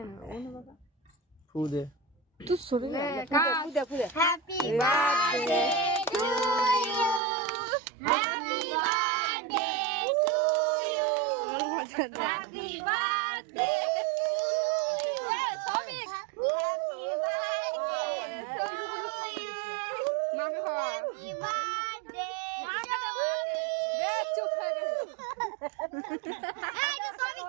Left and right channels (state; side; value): drops out; left; at 7.2 s